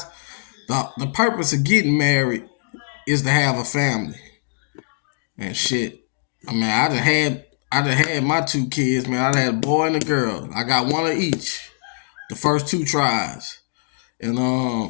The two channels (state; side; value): silent; right; digital silence